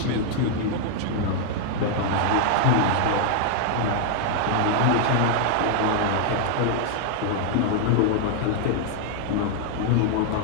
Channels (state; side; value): different; both; correlation 0.00